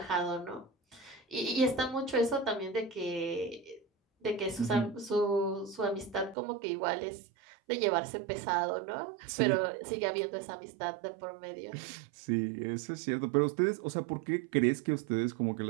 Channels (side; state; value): left; drops out; at 6.4 s